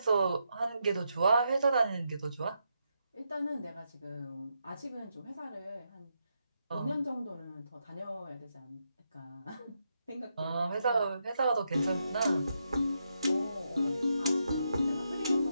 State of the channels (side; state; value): both; inverted; correlation -0.82